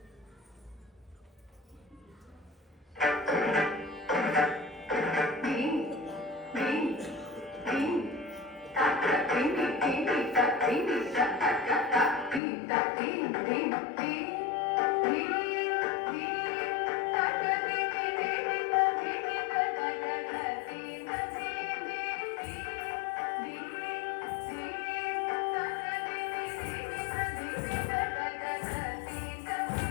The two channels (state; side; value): drops out; right; at 12.4 s